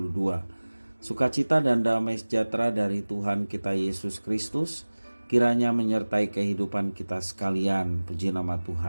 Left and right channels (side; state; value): both; inverted; correlation -1.00